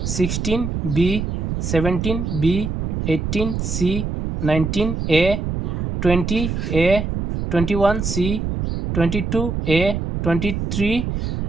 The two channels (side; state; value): right; noise; rumble, 2 dB below the sound